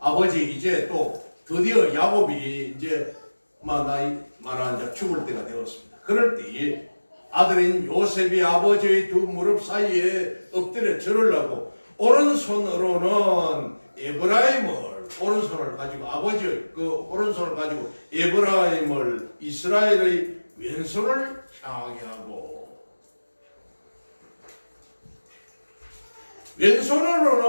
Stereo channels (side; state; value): both; inverted; correlation -1.00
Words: 이제 또 드디어 야곱이 이제 나이 많아 죽을 때가 되었습니다. 그럴 때에 아들인 요셉이 아버지의 두 무릎 사이에 엎드려 절을 오른손으로는 에브라임을 오른손을 가지고 아버지의 그 오른손을 가지고 에브라임을 이스라엘의 왼손을 향하게 하고